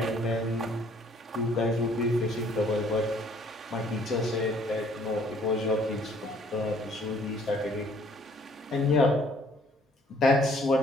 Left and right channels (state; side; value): normal; both; correlation 0.60